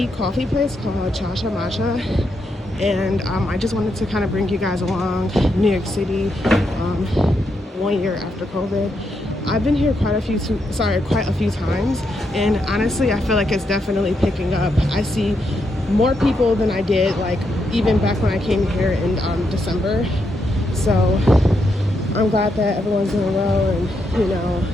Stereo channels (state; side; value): normal; both; correlation 0.80